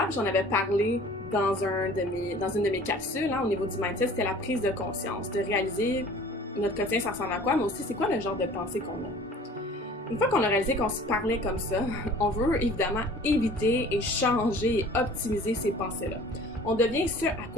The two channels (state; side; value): normal; both; correlation 0.47